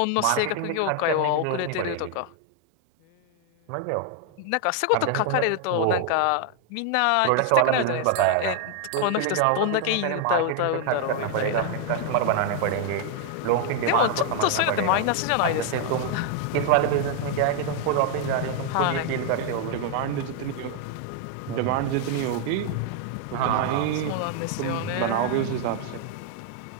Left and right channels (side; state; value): both; different; correlation 0.00